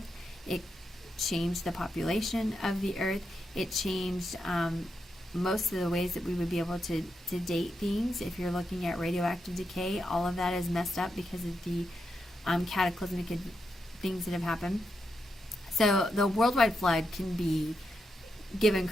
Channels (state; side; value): normal; both; correlation 0.85